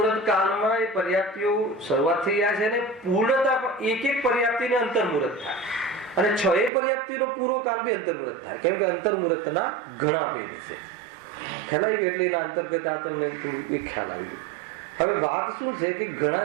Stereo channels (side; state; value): left; drops out; at 6.7 s